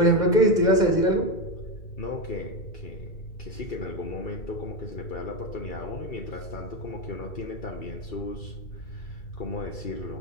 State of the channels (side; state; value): right; late; 2.3 ms